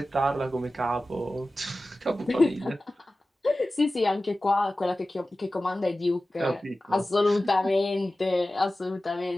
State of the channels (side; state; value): both; normal; correlation 0.95